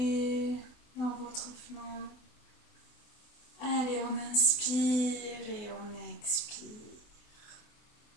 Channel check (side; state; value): right; late; 24 ms